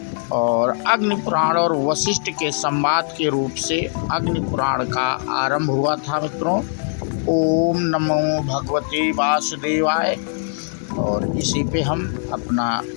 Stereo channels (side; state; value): right; silent; 65 dB below the other